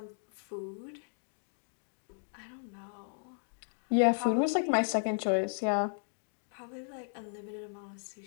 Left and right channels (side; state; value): right; silent; digital silence